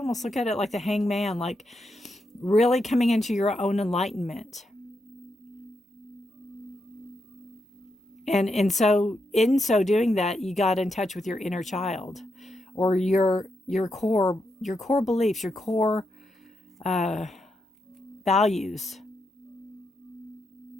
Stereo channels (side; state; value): both; normal; correlation 0.83